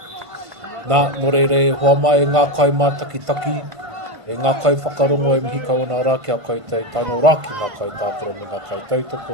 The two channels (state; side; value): late; left; 1.5 ms